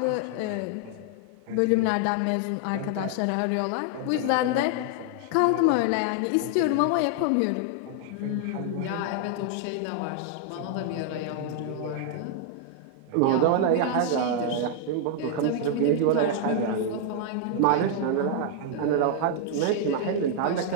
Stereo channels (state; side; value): different; both; correlation 0.00